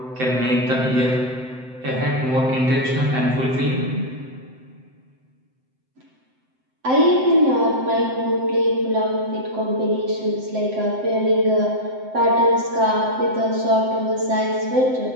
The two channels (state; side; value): late; left; 7.8 ms